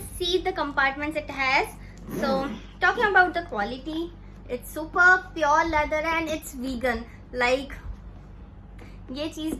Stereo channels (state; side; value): identical; both; correlation 1.00